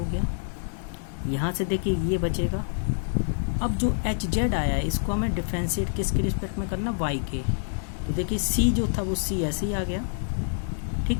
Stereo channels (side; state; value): right; silent; digital silence